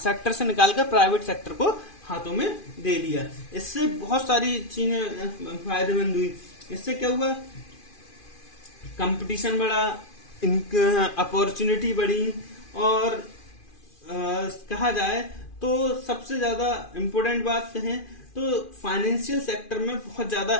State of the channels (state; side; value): late; right; 2.4 ms